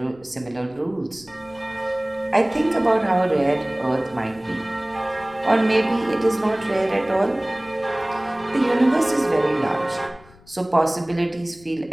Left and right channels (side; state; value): left; noise; rumble, 26 dB below the sound